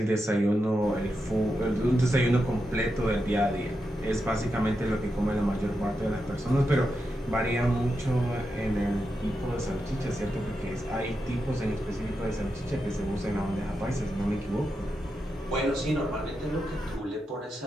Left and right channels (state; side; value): normal; both; correlation 0.87